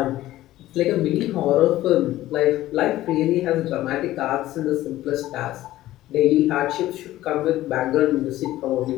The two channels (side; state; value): right; quieter; 15.2 dB